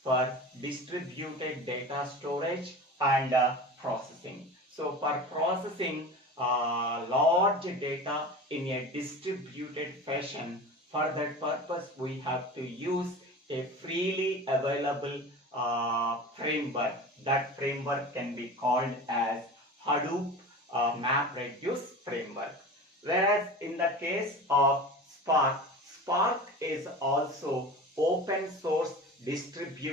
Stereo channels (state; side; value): normal; both; correlation 0.34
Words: for distributed data storage and processing. So for processing large data in a distributed fashion. For that purpose, we have to use a freely available framework. That framework can be called as Hadoop MapReduce framework. Whereas in the case of Spark, Spark is also open source